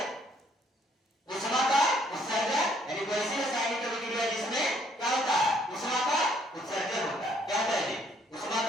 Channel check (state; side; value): normal; both; correlation 0.66